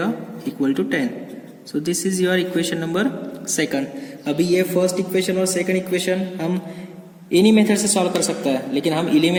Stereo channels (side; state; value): both; identical; correlation 1.00